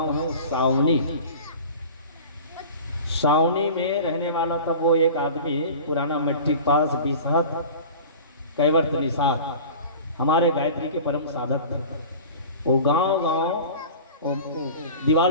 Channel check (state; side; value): inverted; both; correlation -0.39